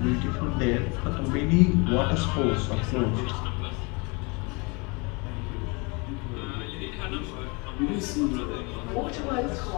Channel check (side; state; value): right; quieter; 29.5 dB